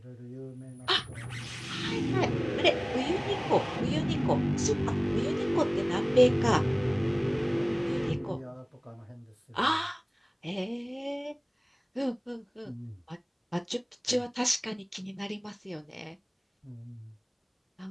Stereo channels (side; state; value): both; identical; correlation 1.00